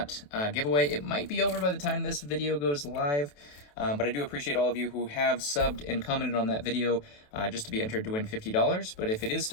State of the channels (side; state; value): right; late; 28 ms